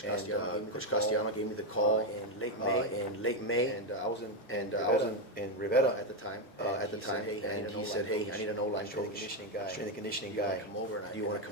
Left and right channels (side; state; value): both; normal; correlation 0.06